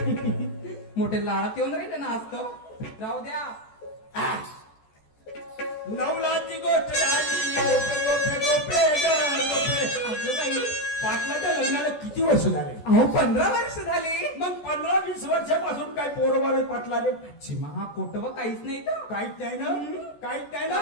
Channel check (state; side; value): late; right; 14 ms